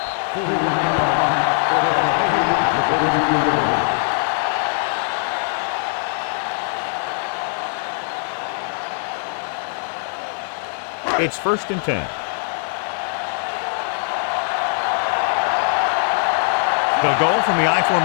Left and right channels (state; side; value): silent; right; 65 dB below the other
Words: 41-yard punt. Fair catch made at the 42-yard line. It's 1st and 10. They'll go from the I